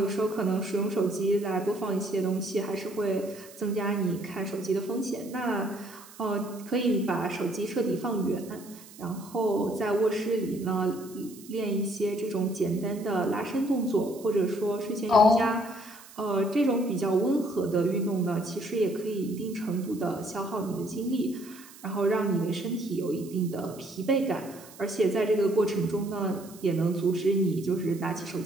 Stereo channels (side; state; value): right; noise; hiss, 20 dB below the sound